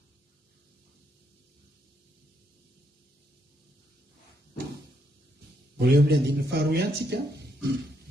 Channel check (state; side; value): normal; both; correlation 0.75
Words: mbola eo amin'ny andininy faharoa ihany tsika